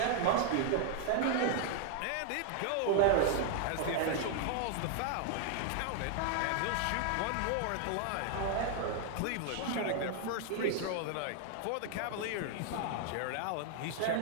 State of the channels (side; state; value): both; different; correlation 0.00